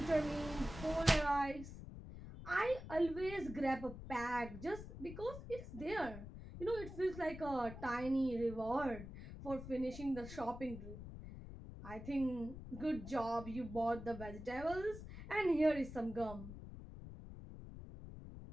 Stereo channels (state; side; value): noise; left; rumble, 11 dB below the sound